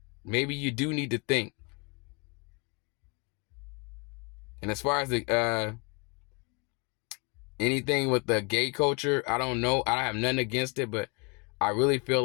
Maybe you do need to think. And as far as the anything with the gay culture, I don't know. I have nothing against it, but I really feel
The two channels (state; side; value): quieter; right; 32.2 dB